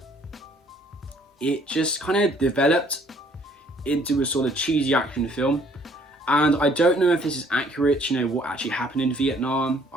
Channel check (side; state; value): both; normal; correlation 0.61